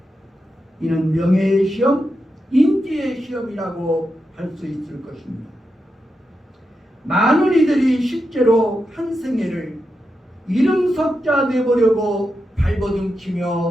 이는 명예의 시험, 인기의 시험이라고 할 수 있을 것입니다. 많은 이들이 실제로 한 생애를 이름석자 내보려고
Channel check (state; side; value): normal; both; correlation 0.87